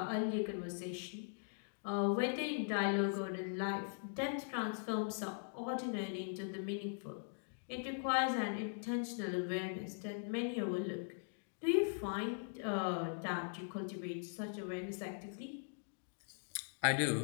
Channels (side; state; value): right; silent; digital silence